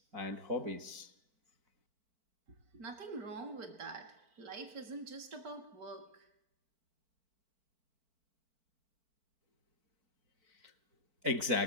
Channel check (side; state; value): left; late; 4.5 ms